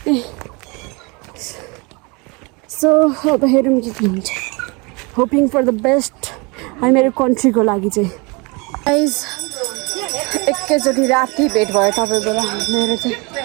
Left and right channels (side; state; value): left; quieter; 28.7 dB